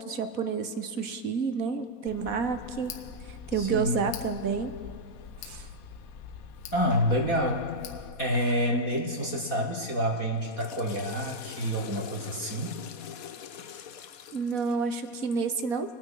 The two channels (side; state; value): right; late; 4.2 ms